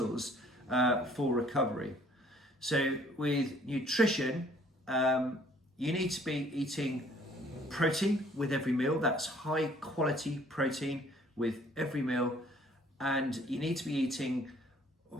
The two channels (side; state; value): both; normal; correlation 0.58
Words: for recovery. So with nutrition, you need to be eating protein with every meal. That's high quality protein with every meal. And you need to be eating